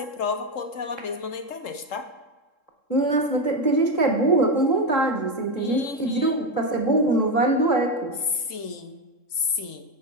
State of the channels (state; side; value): late; right; 3.7 ms